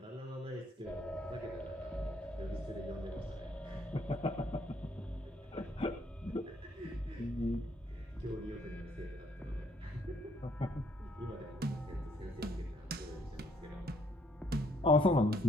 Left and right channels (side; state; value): both; normal; correlation 0.67